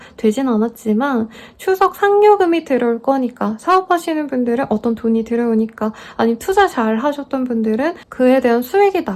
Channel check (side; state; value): both; identical; correlation 1.00